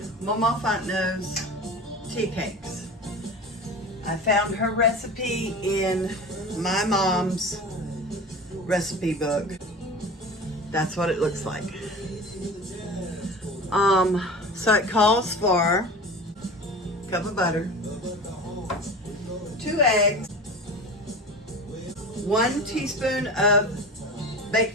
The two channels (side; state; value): both; normal; correlation 0.34